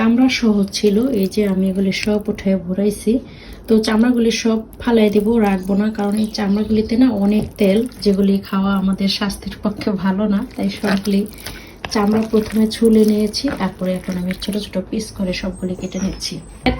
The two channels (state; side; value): identical; both; correlation 1.00